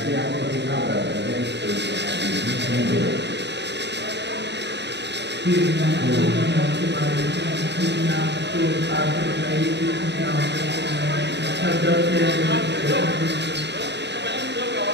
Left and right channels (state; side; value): late; left; 0.50 ms